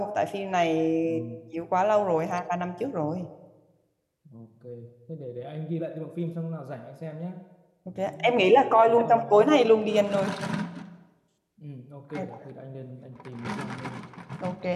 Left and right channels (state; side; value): identical; both; correlation 1.00